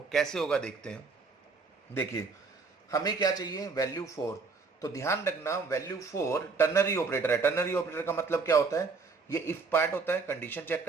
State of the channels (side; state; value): left; quieter; 4.4 dB